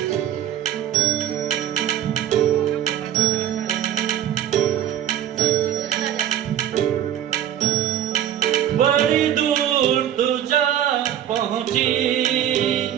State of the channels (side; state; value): left; quieter; 10.8 dB